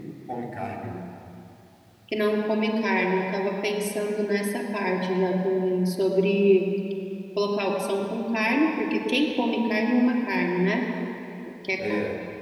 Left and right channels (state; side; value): identical; both; correlation 1.00